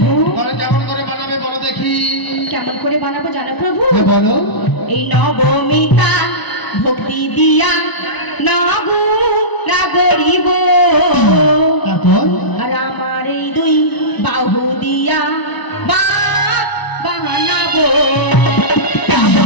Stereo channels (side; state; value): right; late; 1.0 ms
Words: তাহলে কেমন করে বানাবে বলো দেখি। কেমন করে বানাবো জানো প্রভু? হ্যাঁ বলো। এই নবমিতা ভক্তি দিয়া নাগু না গরিব, তারপর আর আমার এই দুই বাহু দিয়া বানাবো।